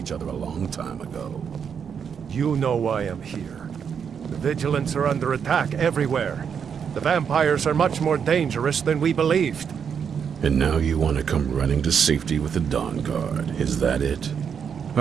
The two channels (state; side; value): quieter; left; 7.2 dB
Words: other a long time ago. You know why I'm here. The Vigilants are under attack everywhere. The vampires are much more dangerous than we believed. And now you want to come running to safety with the Dawnguard, is that it?